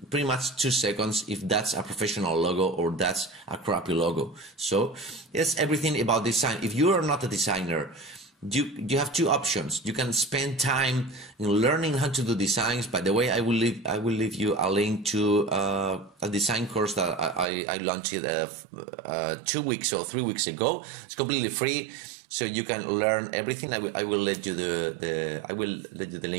pretty much 2 seconds if that's a professional logo or that's a crappy logo. So it's everything about design. If you are not a designer, you have two options. You can spend time in learning how to do designs. By the way, I will leave you a link to a design course that I launched 2 weeks or 3 weeks ago. It's completely free, so you can learn everything. I will let you the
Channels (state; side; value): drops out; left; at 17.4 s